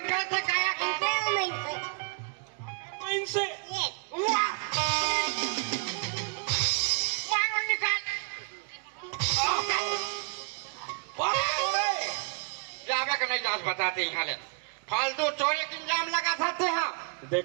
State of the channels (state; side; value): quieter; left; 38.0 dB